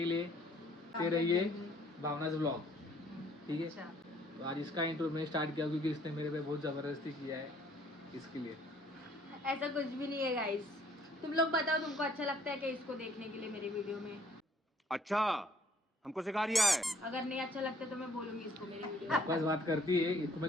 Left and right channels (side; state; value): both; normal; correlation 0.61